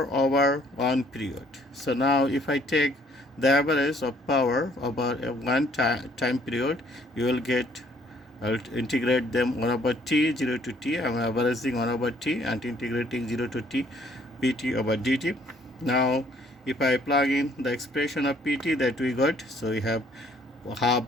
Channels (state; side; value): normal; both; correlation 0.62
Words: over one period. So now if I take the average of power over a one time period, you will get, I'll integrate them 1 over t, 0 to t. I'm averaging 1 over t and integrating 0 to t, pt over dt. Now if I plug in the expression of pt that we got, so we have half